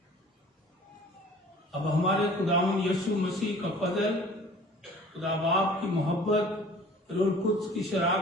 अब हमारे खुदावंद यीशु मसीह का फजल, खुदा बाप की मोहब्बत, रूह कुद्स की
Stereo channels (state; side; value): normal; both; correlation 0.48